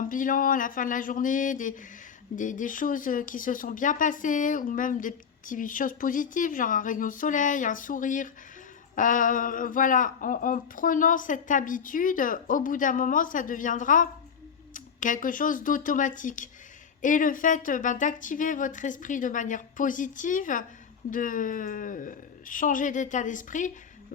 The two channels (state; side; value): quieter; right; 7.0 dB